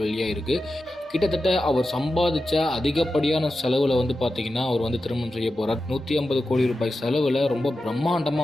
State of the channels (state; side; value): normal; both; correlation 0.91